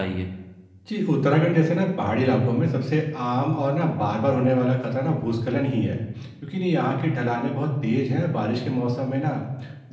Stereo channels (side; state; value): both; identical; correlation 1.00